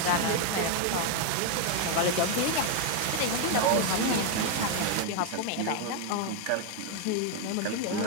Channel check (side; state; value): both; different; correlation 0.00